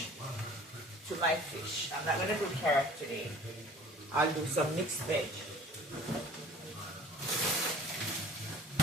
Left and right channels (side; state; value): both; normal; correlation 0.47